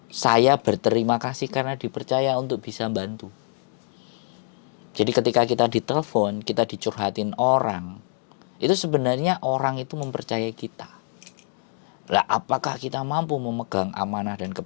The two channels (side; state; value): right; silent; 56 dB below the other